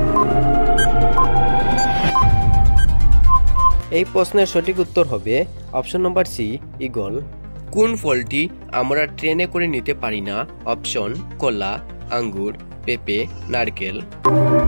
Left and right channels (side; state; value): both; inverted; correlation -1.00